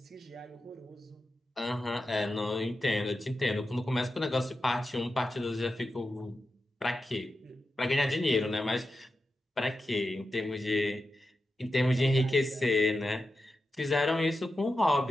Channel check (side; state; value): both; normal; correlation 0.90